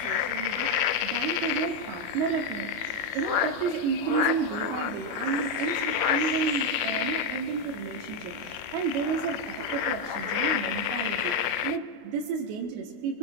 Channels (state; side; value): late; left; 28 ms